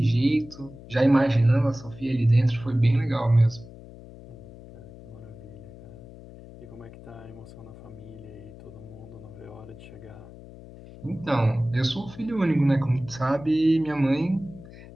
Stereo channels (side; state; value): left; noise; hum, 17 dB below the sound